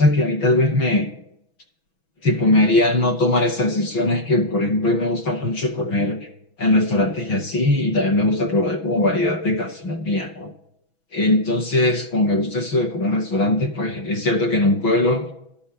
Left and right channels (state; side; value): late; right; 6.1 ms